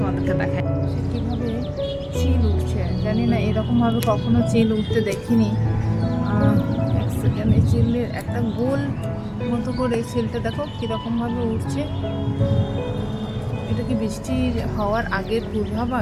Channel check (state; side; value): identical; both; correlation 1.00